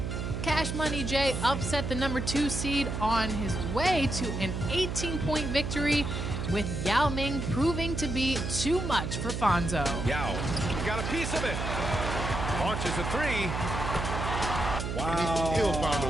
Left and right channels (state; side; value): noise; right; hum, 3 dB below the sound